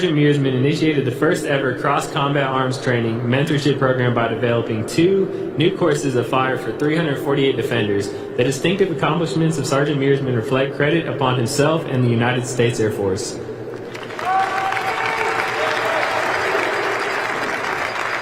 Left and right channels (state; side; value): identical; both; correlation 1.00